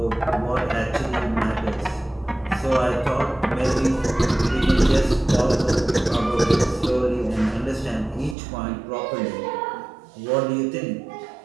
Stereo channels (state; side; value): drops out; left; at 8.3 s